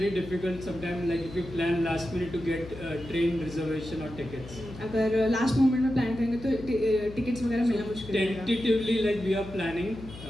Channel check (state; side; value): noise; left; hum, 14 dB below the sound